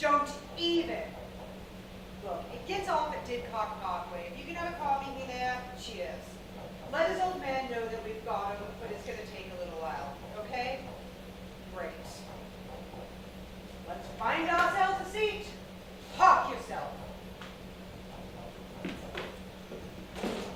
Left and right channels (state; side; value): identical; both; correlation 1.00